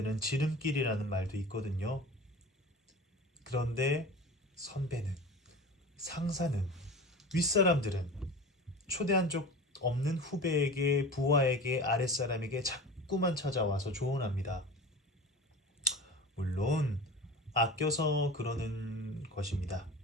지름길이라는 말도 있거든요. 그런데 선배는, 상사는, 윗사람들은 초대한 적 없는 후배에게, 부하에게, 아랫사람에게 자꾸만 찾아와서 조언합니다. 물론 아껴서 그러는 것입니다.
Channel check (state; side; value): normal; both; correlation 0.34